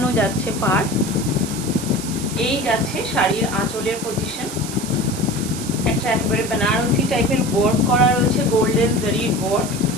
যাচ্ছে পার্ট। এই যাচ্ছে শাড়ির আঁচলের পজিশন, একটা একেবারে বেনারসি টাইপের ওয়ার্ক করা রয়েছে, গোল্ডেন জারির ওয়ার্ক,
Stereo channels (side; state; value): right; noise; hiss, 10 dB below the sound